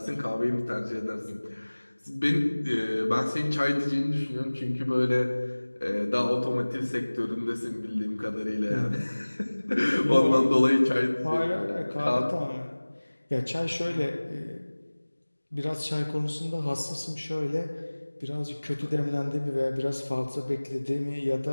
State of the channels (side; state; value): both; inverted; correlation -1.00